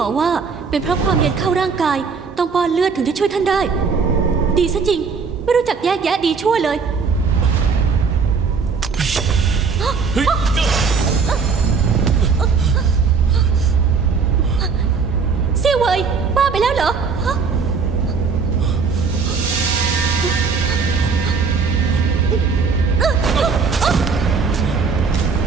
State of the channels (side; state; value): left; quieter; 5.2 dB